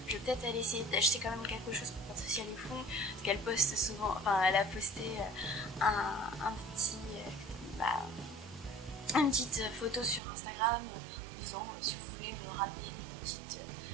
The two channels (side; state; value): left; drops out; at 10.2 s